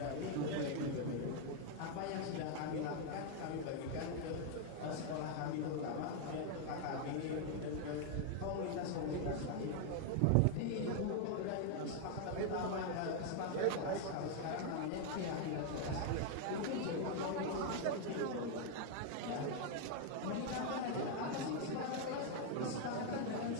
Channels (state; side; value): different; both; correlation 0.00